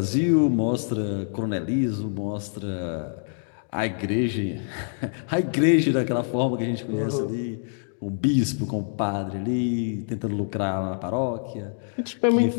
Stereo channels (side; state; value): right; silent; digital silence